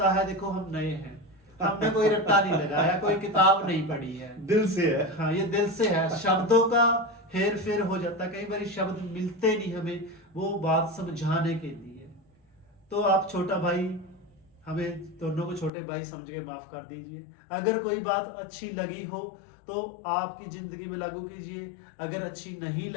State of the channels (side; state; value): right; drops out; at 15.7 s